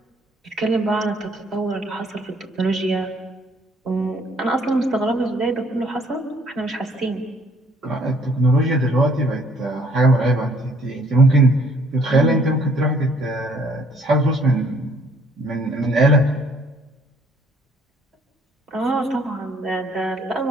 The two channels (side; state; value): both; normal; correlation 0.62